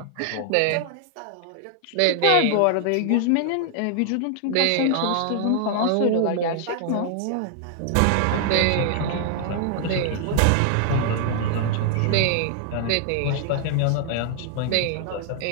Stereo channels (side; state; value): both; different; correlation 0.00